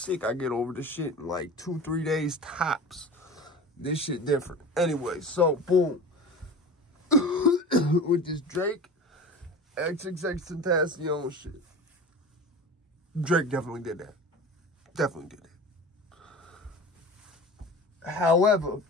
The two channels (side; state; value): both; normal; correlation 0.35